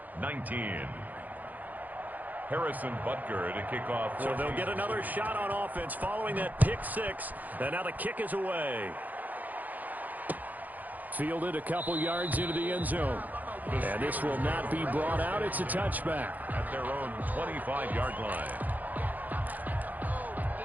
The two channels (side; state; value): left; late; 0.082 ms